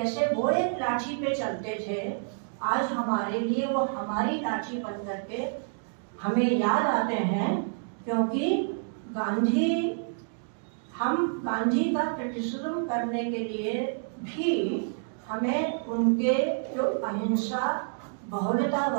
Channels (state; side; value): silent; left; digital silence